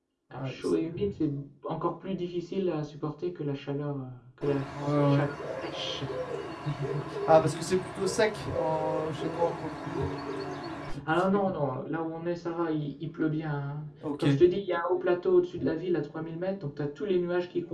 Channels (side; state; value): both; identical; correlation 1.00